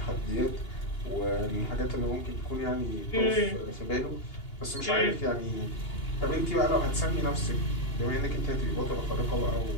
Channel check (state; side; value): late; right; 2.8 ms